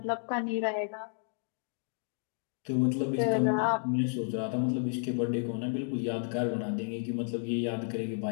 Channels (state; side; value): silent; right; 56 dB below the other